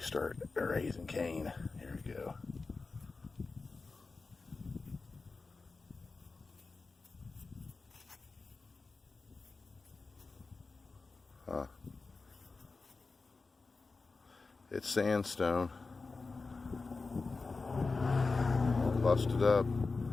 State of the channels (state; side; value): quieter; right; 4.0 dB